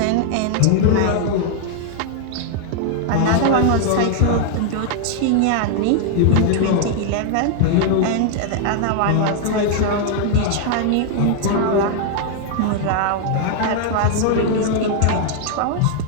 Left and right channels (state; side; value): different; both; correlation 0.00